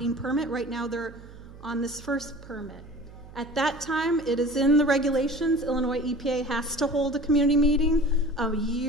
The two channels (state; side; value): noise; right; hum, 18 dB below the sound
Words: permit. Right now they're on this first permit. At that time, it is in the regulations, Illinois EPA has to hold a community meeting a